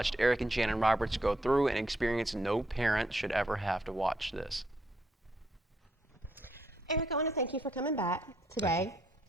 Eric and Shannon Roberts go through an experience no parent should ever have to watch this. Eric, I want to thank you for coming back today.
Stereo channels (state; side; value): normal; both; correlation 0.74